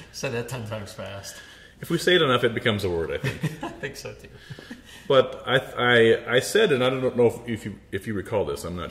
Said that 10 times fast. If we say it enough, it becomes a word, I think. I think so, too. But I said, and I don't know if you recall this, I'm not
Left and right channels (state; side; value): identical; both; correlation 1.00